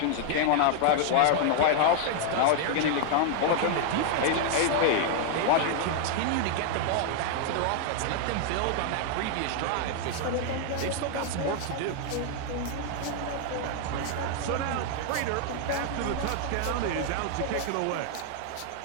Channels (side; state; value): both; different; correlation 0.00